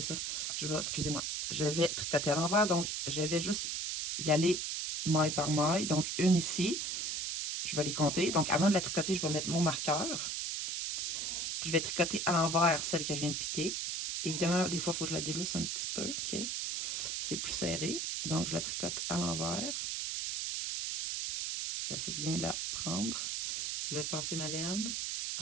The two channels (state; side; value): noise; right; hiss, 1 dB below the sound